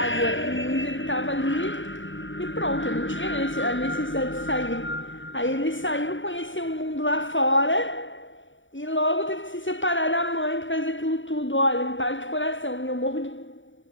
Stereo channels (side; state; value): right; late; 0.56 ms